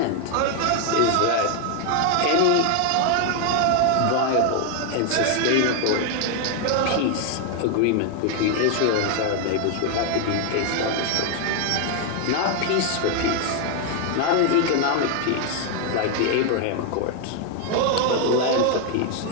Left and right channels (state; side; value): different; both; correlation 0.01